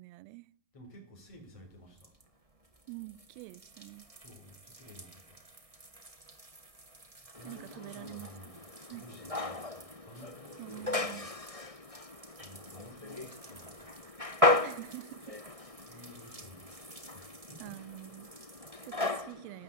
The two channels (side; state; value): left; late; 1.6 ms